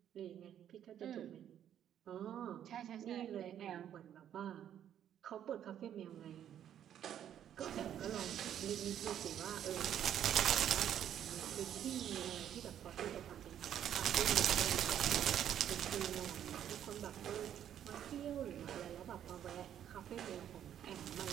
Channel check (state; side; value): quieter; left; 10.1 dB